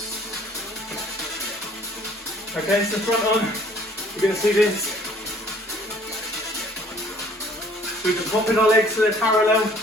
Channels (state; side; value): normal; both; correlation 0.56